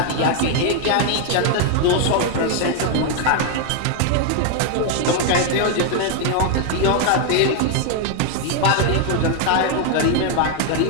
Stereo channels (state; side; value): different; both; correlation 0.00